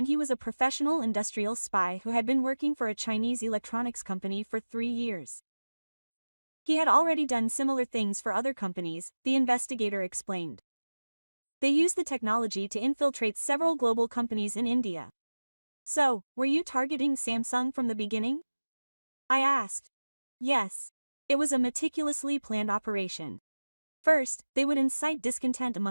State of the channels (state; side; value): inverted; both; correlation -1.00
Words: he was a professional industrial spy who had been working for a Chinese electronics company for 3 years. He had already done similar things for other companies, the investigator explained. They used the technology to infiltrate several global companies in India. So, were you targeting Samsung from the beginning? I asked. Yes. It was a meticulously planned operation. First, they would incite discontent